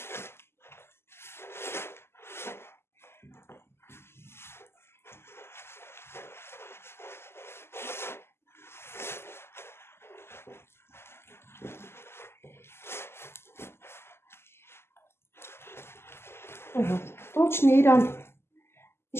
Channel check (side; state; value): right; late; 0.12 ms